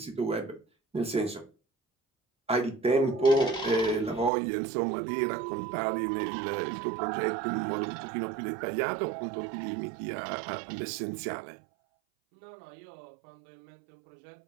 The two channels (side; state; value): left; drops out; at 4.3 s